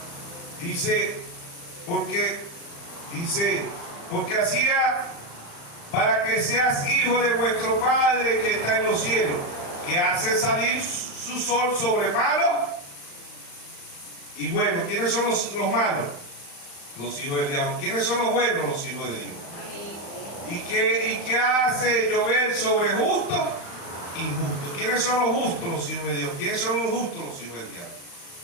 Dice, porque hacía para que seas hijo de vuestro Padre que está en los cielos, que hace salir su sol sobre malos y buenos. ¿Quiénes son los malos? Los hijos del diablo. ¿Quiénes son los buenos? Los hijos de Dios. ¿Y qué hace llover sobre justos? Injustos. ¿Quiénes son los justos? Los hijos de Dios. ¿Quiénes son los justos? Los hijos del diablo.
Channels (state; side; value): late; right; 35 ms